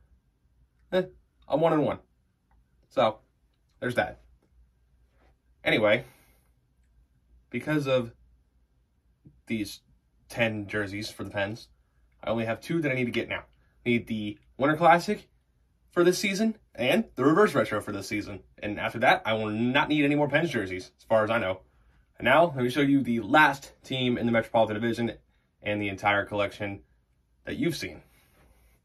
I'm 1-1. So, there's that. Anyway, because of these 10 jerseys for the Pens, I only have 2 that I need to get now. I need the Winter Classic for this season and the reverse retro for this season. And after that, I will not need any more Pens jerseys, as far as I know. And now, let me show you the last team in the Metropolitan Division and the entire collection that you've seen.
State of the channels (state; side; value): identical; both; correlation 1.00